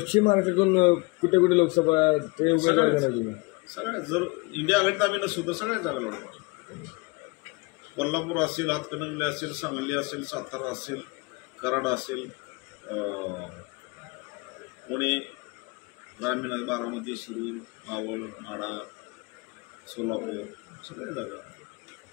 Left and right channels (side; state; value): right; quieter; 27.5 dB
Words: महाराष्ट्रातून कुठे कुठे लोकसभा ते सगळ्या, जर इंडिया आघाडीत आम्ही नसू तर सगळ्या जागा लढवणार. कोल्हापूर असेल, हातकणंगले असेल, सांगली असेल, सातारा असेल, कराड असेल, पुणे, ग्रामीण, बारामती, शिरूर, मावळ, माढा, सोलापूर, सगळ्या जागा.